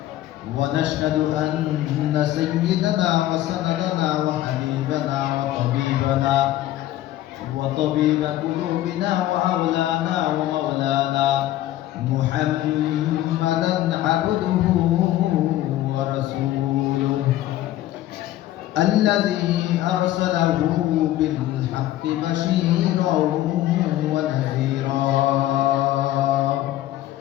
ونشهد أن سيدنا وسندنا وحبيبنا وطبيب قلوبنا وأولانا ومولانا محمدا عبده ورسوله الذي أرسله بالحق بشيرا ونذيرا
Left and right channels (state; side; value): quieter; right; 14.1 dB